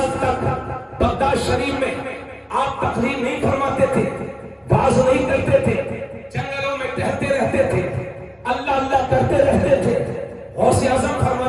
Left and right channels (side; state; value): both; identical; correlation 1.00